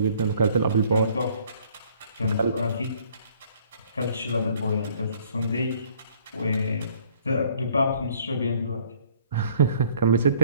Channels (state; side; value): inverted; both; correlation -0.59